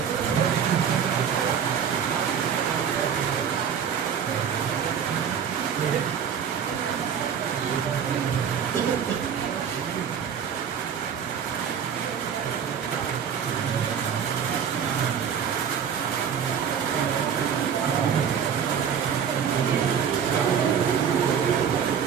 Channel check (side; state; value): left; quieter; 7.7 dB